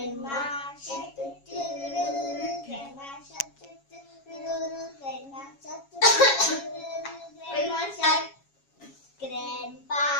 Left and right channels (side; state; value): right; late; 7.3 ms